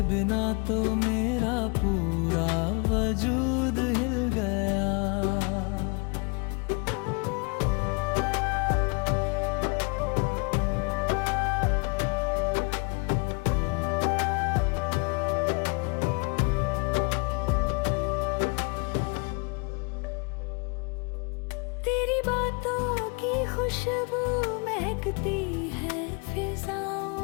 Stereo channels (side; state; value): right; quieter; 32.6 dB